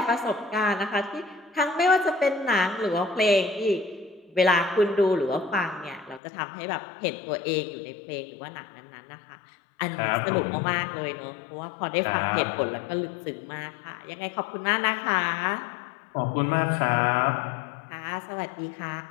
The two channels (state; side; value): drops out; right; at 6.2 s